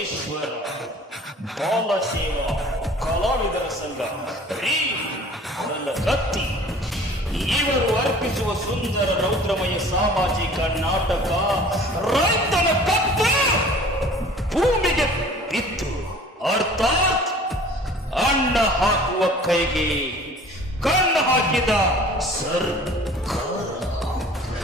ಬಾಲಸೇವಾ ಕಲಾವಿದರ ಸಂಘ ರೀ ನನ್ನ ಕತ್ತಿ ಇವರು ಅರ್ಪಿಸುವ ಸುಂದರ ರೌದ್ರಮಯ ಸಾಮಾಜಿಕ ನಾಟಕ ರೈತನ ಕತ್ತು ಭೂಮಿಗೆ ಬಿದ್ದು ಅರ್ಥಾತ್ ಅಣ್ಣ ಹಾಕುವ ಕೈಗೆ ಕಣ್ಣು ಹಾಕಿದ ಸರ್ಕಾರ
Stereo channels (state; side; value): normal; both; correlation 0.47